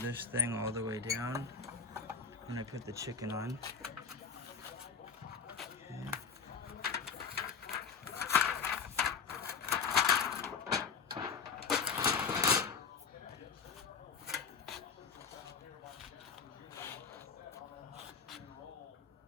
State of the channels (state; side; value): quieter; right; 5.8 dB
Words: thing all the way down, and I put the chicken on. Okay.